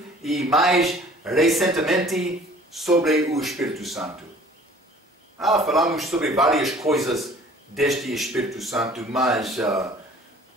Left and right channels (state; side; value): normal; both; correlation 0.50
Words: e mais recentemente sobre o Espírito Santo. Falamos sobre várias coisas deste Espírito Santo, mas